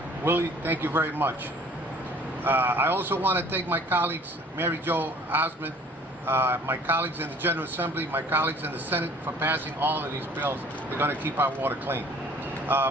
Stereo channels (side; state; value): both; normal; correlation 0.52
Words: Willie, thank you very much. I also want to thank my colleagues, Mary Jo Osmond, my colleagues in the General Assembly, my colleagues in the Senate for passing all of these bills. They're going to keep our water clean.